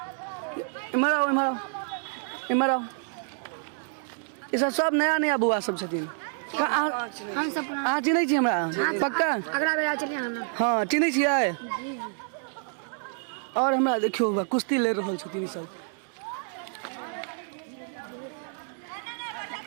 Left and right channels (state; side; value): silent; left; 58 dB below the other